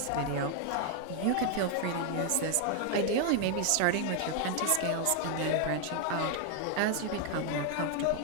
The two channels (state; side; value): different; both; correlation 0.01